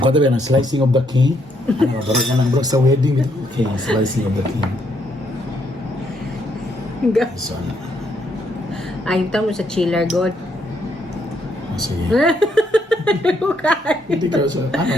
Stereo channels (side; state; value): both; normal; correlation 0.73